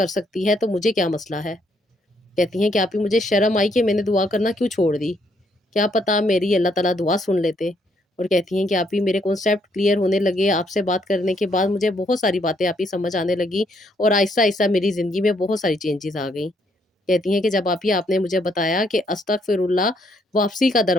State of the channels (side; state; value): both; normal; correlation 0.71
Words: سکتی ہے تو مجھے کیا مسئلہ ہے۔ کہتی ہیں کہ آپ ہی مجھے شرم آئی کہ میں نے دعا کرنا کیوں چھوڑ دی، کیا پتا میری اللہ تعالیٰ دعا سن لیتے۔ اور کہتی ہیں کہ آپ ہی میرے کانسیپٹ کلیئر ہونے لگے، آپ سے بات کرنے کے بعد مجھے بہت ساری باتیں آپ ہی سمجھ آنے لگی، اور آہستہ آہستہ میری زندگی میں بہت ساری چینجز آ گئیں۔ کہتی ہیں کہ جب آپ نے مجھے بتایا کہ استغفر اللہ واپسی کا